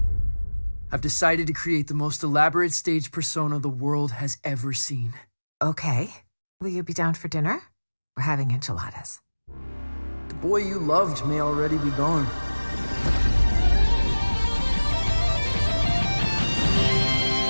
I've decided to create the most elaborate stage persona the world has ever seen. Okay. Will you be down for dinner? We're having enchiladas. The boy you loved may already be gone.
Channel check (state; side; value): inverted; both; correlation -1.00